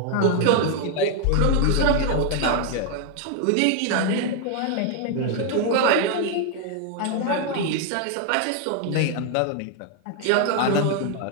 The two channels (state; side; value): different; both; correlation 0.00